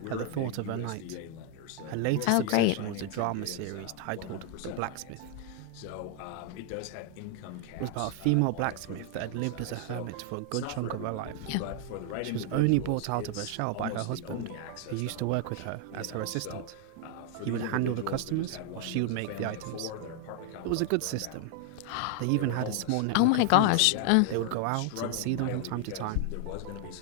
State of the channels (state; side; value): different; both; correlation 0.00